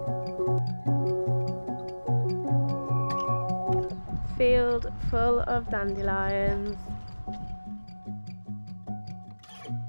Field full of dandelions.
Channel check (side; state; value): both; inverted; correlation -1.00